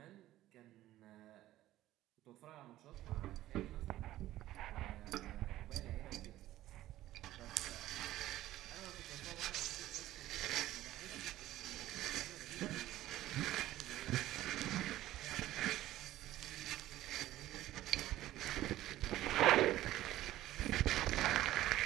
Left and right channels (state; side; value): quieter; left; 14.7 dB